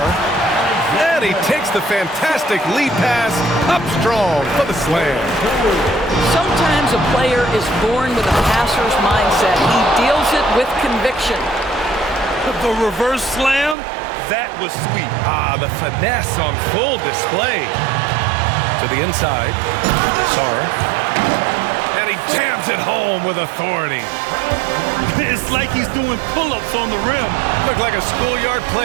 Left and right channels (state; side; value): drops out; left; at 13.8 s